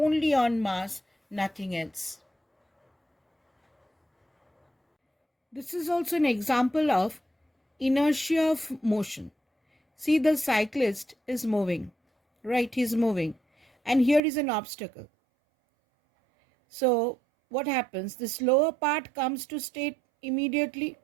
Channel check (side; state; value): left; drops out; at 14.2 s